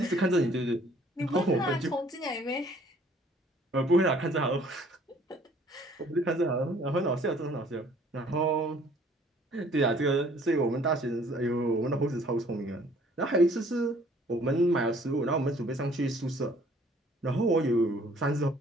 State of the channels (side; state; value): both; normal; correlation 0.57